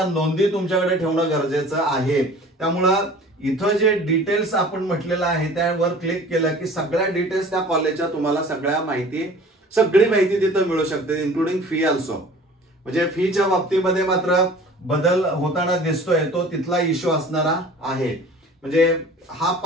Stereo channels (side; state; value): both; normal; correlation 0.46